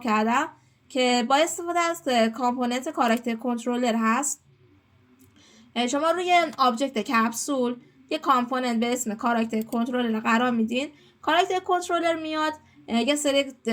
کردم که با استفاده از کامپوننت کاراکتر کنترلر هست. شما روی آبجکت کپسول یه کامپوننت به اسم کاراکتر کنترلر قرار میدین. کاراکتر کنترلر میاد یه سری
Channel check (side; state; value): both; identical; correlation 1.00